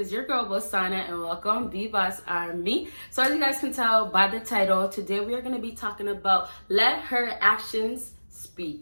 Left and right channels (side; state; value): both; inverted; correlation -1.00